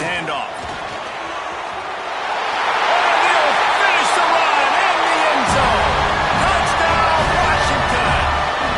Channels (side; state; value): both; identical; correlation 1.00